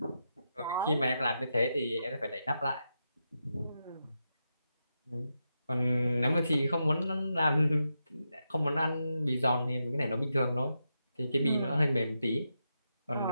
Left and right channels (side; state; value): both; inverted; correlation -0.86